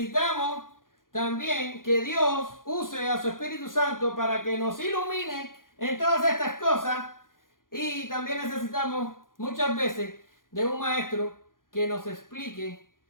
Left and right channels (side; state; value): right; late; 0.90 ms